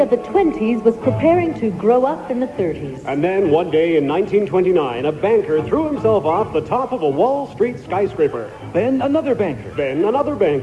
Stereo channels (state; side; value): identical; both; correlation 1.00